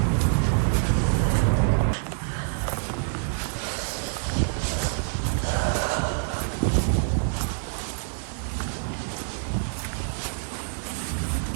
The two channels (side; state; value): left; silent; digital silence